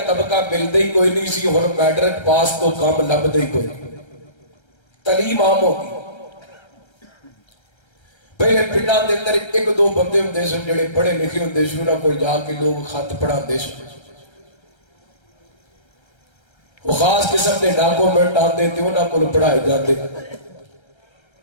طبقہ ملتا ہی کوئی نہیں سی، ہن میٹرک پاس تو کام لبدا ہی کوئی نہیں، تعلیم عام ہو گئی۔ پہلے پنڈاں دے اندر 1-2 بندے ہوندے سن جڑے پڑھے لکھے ہوندے سن، انہاں کول جا کے لوگ خط پڑھاندے سن۔ وہ خاص قسم کے ڈاکومنٹ آتے تھے انہوں کو پڑھائے جاتے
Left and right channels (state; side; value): late; right; 1.3 ms